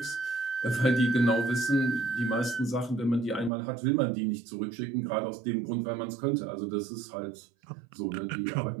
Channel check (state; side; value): drops out; left; at 3.5 s